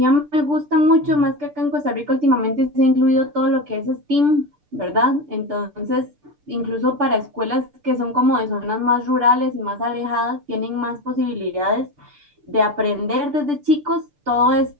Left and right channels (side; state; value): left; late; 6.8 ms